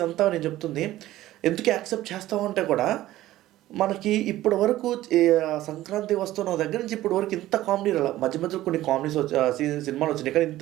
నేను చెప్తుంది ఎందుకు యాక్సెప్ట్ చేస్తామంటే కూడా, మనకి ఇప్పటి వరకు సంక్రాంతి వస్తున్న దగ్గర నుంచి ఇప్పటి వరకు ఇంత కామెడీ రాల. మధ్యలో కొన్ని కామెడీస్ సినిమాలు వచ్చినాయి, కానీ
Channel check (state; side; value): quieter; left; 15.2 dB